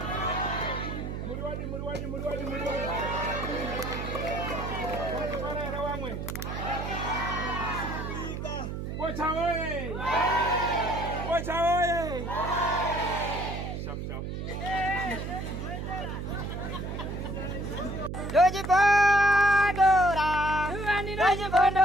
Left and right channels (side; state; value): right; noise; hum, 5 dB below the sound